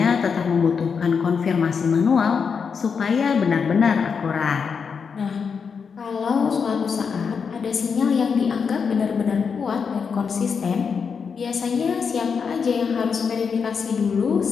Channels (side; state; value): right; quieter; 6.0 dB